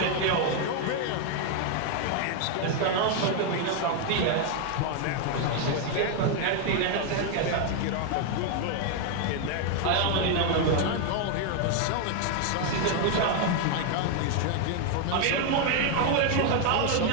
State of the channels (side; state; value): both; different; correlation 0.00